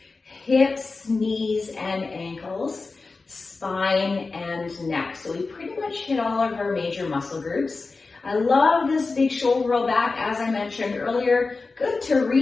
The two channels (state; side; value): quieter; right; 4.0 dB